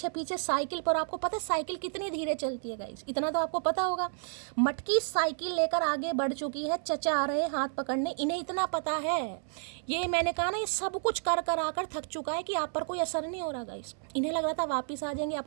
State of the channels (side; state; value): left; silent; 57 dB below the other